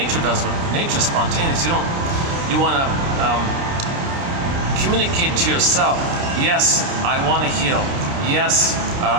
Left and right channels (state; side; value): late; left; 29 ms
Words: does what nature's spontaneous. You want to communicate to yourself. Yes, I want to heal. Yes,